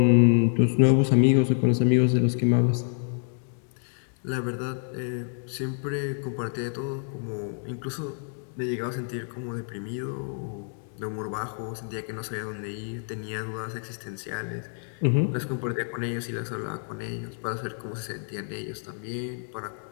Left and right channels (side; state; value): right; silent; 60 dB below the other